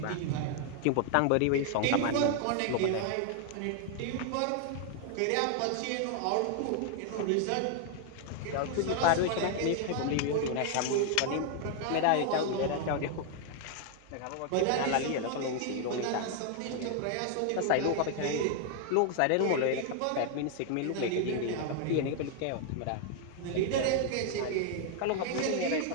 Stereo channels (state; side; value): different; both; correlation 0.00